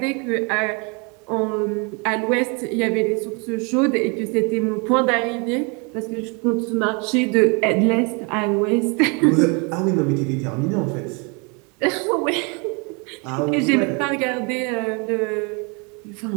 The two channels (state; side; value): quieter; left; 32.4 dB